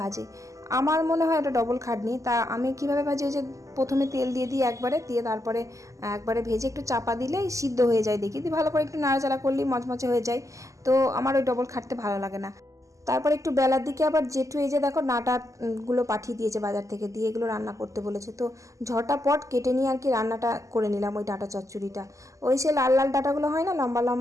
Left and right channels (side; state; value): left; late; 0.16 ms